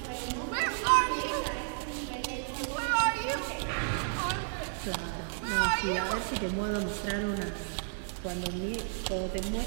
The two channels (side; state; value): left; silent; digital silence